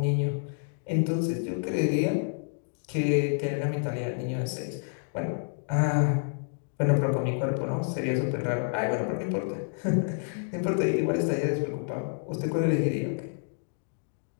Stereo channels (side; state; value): right; silent; digital silence